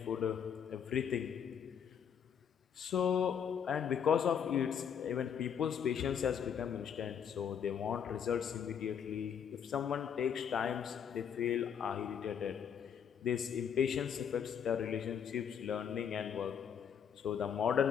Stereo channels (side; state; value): right; quieter; 7.9 dB